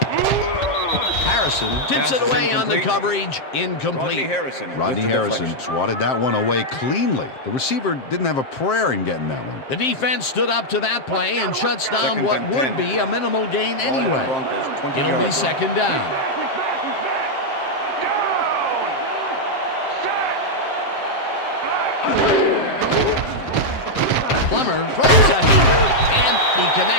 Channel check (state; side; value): late; right; 7.6 ms